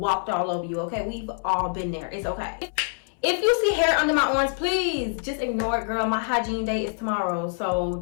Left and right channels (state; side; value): silent; right; 61 dB below the other